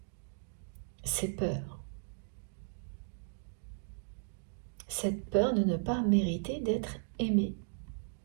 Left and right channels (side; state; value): left; silent; digital silence